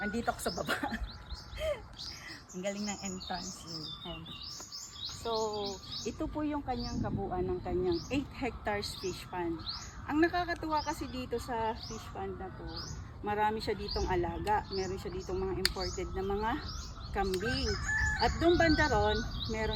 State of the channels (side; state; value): both; identical; correlation 1.00